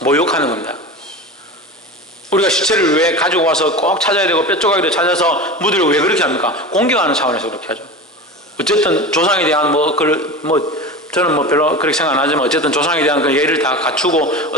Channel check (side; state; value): both; normal; correlation 0.29